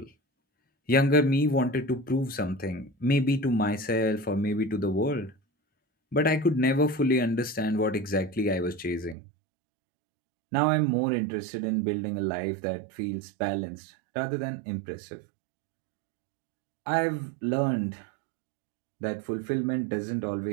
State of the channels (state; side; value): drops out; left; at 9.2 s